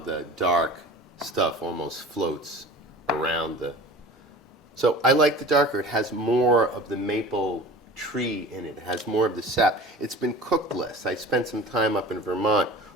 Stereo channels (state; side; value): normal; both; correlation 0.39